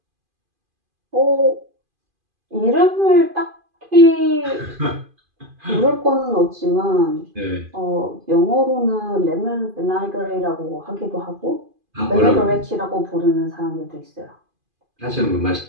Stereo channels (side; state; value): left; late; 2.5 ms